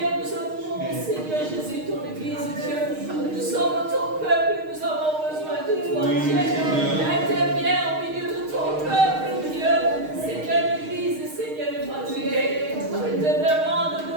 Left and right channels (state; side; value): late; left; 6.5 ms